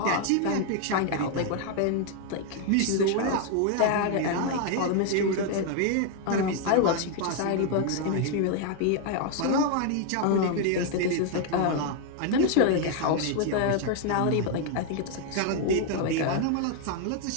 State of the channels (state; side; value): different; both; correlation 0.00